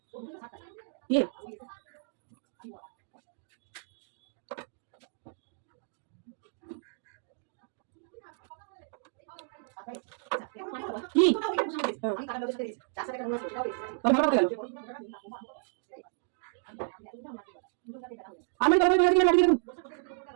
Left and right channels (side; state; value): left; silent; digital silence